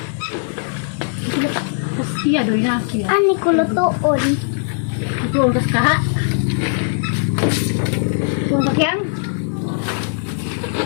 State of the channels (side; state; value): right; silent; 66 dB below the other